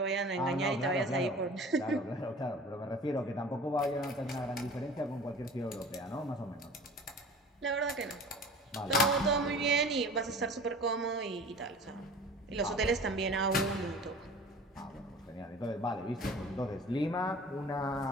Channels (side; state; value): both; normal; correlation 0.42